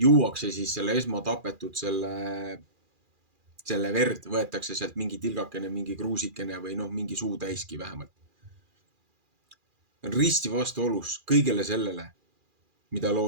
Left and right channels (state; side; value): late; left; 2.4 ms